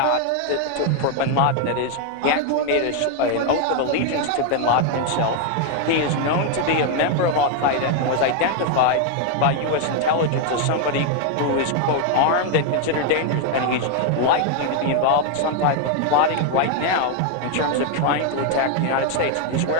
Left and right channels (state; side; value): different; both; correlation 0.01